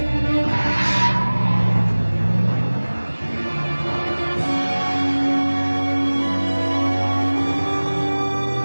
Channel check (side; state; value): both; inverted; correlation -1.00